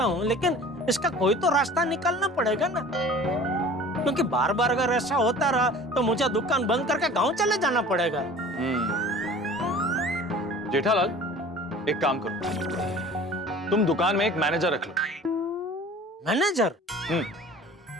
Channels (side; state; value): both; normal; correlation 0.44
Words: हूँ, लेकिन इसका कोई तो रास्ता निकालना पड़ेगा ना, क्योंकि बार बार अगर ऐसा होता रहा तो मुझे दुकान बंद करके गांव चले जाना पड़ेगा। जेठालाल, एक काम करो, तुम दुकान में एक मैनेजर रख लो। मैनेजर?